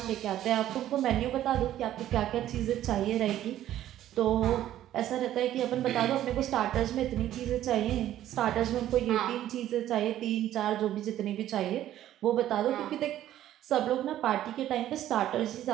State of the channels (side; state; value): left; quieter; 12.5 dB